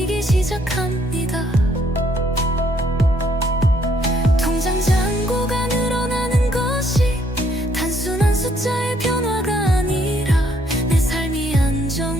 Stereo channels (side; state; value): both; normal; correlation 0.68